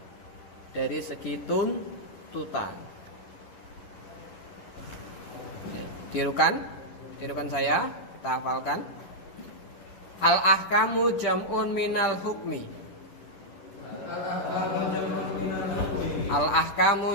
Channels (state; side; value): late; right; 10 ms